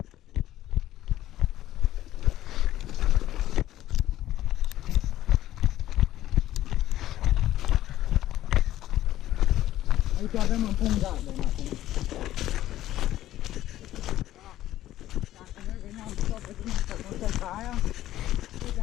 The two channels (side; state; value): right; quieter; 13.7 dB